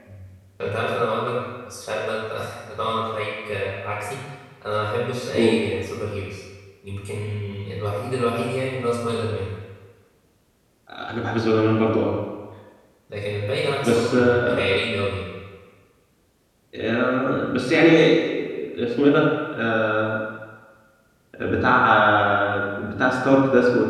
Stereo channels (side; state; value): both; identical; correlation 1.00